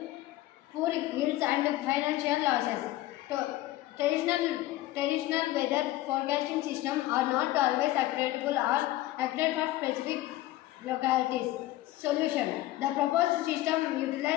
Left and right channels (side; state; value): right; quieter; 16.2 dB